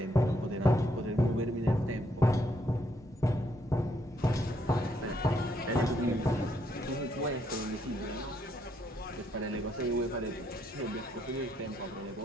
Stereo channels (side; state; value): both; normal; correlation 0.73